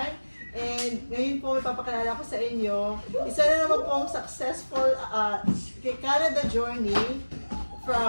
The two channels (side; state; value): both; inverted; correlation -1.00